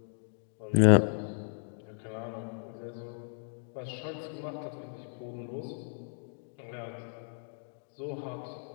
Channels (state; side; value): silent; right; digital silence